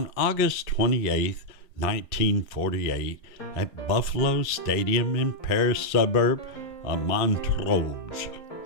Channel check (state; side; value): late; right; 3.6 ms